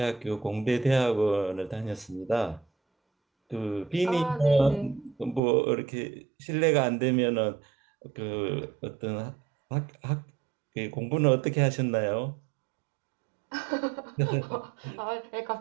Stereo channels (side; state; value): left; drops out; at 5.4 s